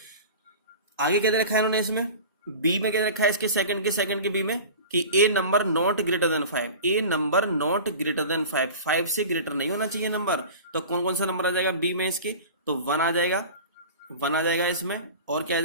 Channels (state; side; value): inverted; both; correlation -0.36